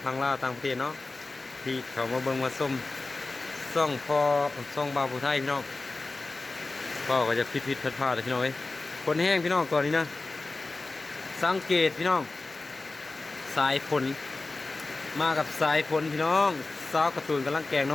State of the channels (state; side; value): quieter; right; 3.4 dB